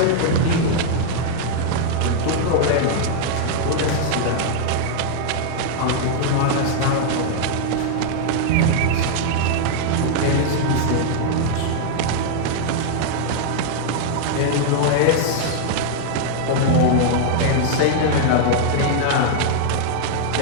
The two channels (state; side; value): different; both; correlation 0.00